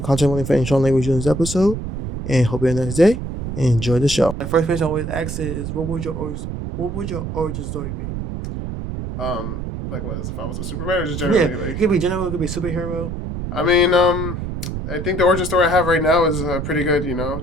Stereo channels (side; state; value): right; noise; rumble, 5 dB below the sound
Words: content warning for any strong language in this episode. And hope you have a nice day and enjoy the show. The first question I always ask is, what would your origin story be? Like what? If I was a Superman or just generally? Yeah, it could be general, it could be superhero. I mean, I think the origin story I have right now is pretty good. You know,